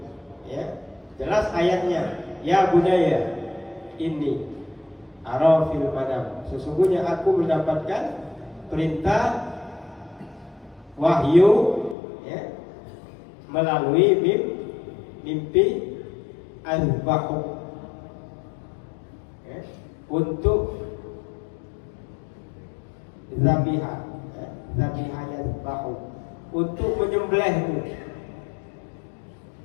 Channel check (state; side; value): drops out; right; at 12.0 s